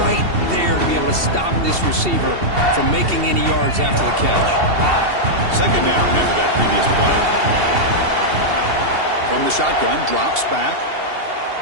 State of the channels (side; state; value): left; late; 2.7 ms